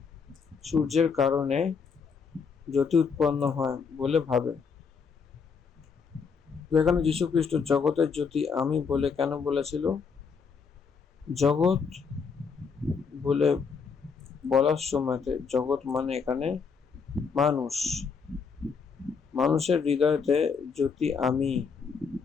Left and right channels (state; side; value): quieter; right; 5.6 dB